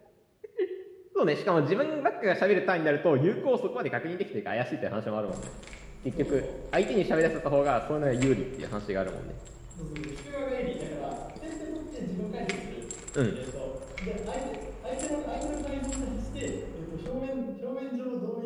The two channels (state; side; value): identical; both; correlation 1.00